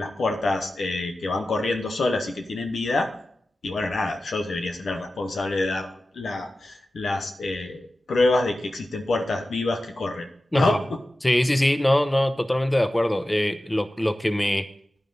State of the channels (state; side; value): normal; both; correlation 0.94